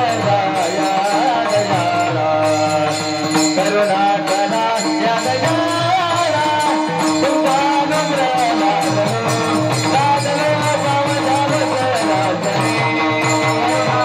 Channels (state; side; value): identical; both; correlation 1.00